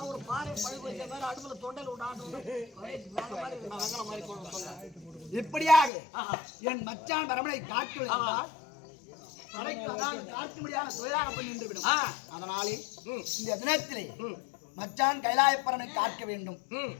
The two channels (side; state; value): right; drops out; at 5.9 s